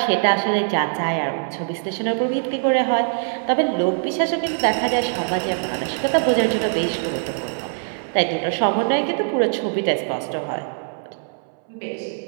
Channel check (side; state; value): left; silent; 64 dB below the other